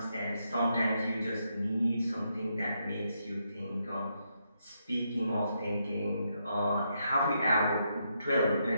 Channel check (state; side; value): inverted; both; correlation -0.80